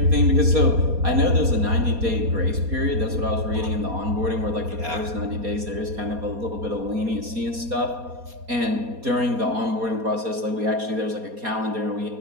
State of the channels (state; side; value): late; left; 4.2 ms